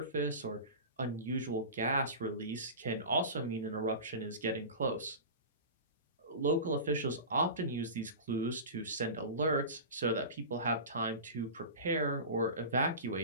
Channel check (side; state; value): both; inverted; correlation -0.31